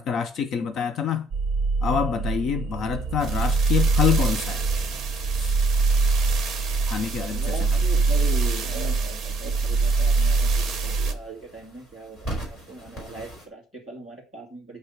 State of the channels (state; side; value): normal; both; correlation 0.64